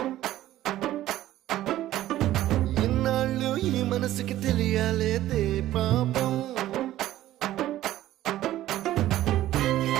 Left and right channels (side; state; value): left; quieter; 14.2 dB